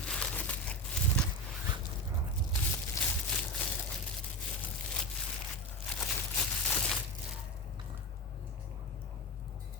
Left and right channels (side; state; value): both; normal; correlation 0.20